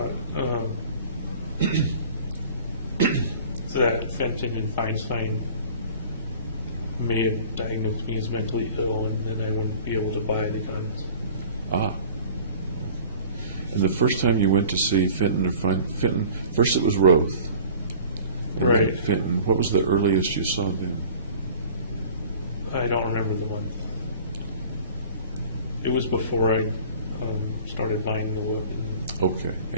that Fenton and Feinstein may have diagnosed me as mentally ill, and then I wouldn't be able to buy the guns. Ah. And the first time you went to see Fenton or Fenton, first it was Roth. And Right. then Fenton, what was the earliest you saw them? I don't remember the month. It was before I started buying the weapon. Okay.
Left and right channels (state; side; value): inverted; both; correlation -0.45